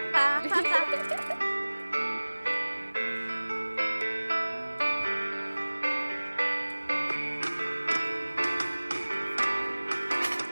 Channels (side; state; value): both; inverted; correlation -1.00